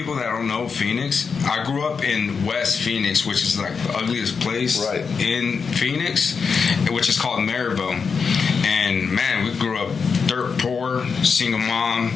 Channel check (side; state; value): right; quieter; 5.6 dB